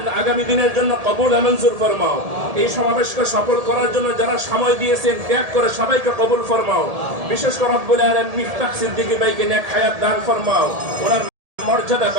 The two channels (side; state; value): left; late; 1.8 ms